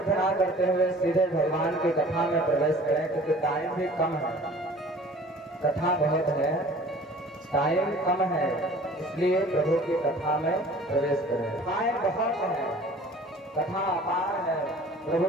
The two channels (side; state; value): both; normal; correlation 0.47